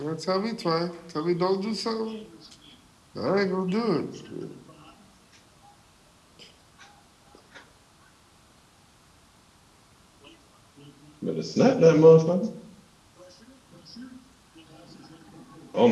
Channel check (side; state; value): both; identical; correlation 1.00